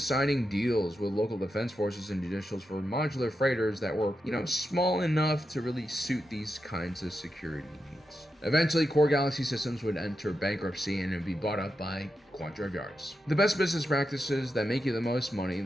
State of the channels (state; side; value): normal; both; correlation 0.87